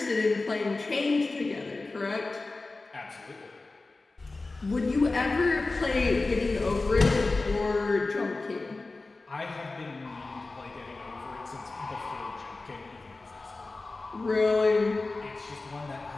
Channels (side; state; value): right; quieter; 3.4 dB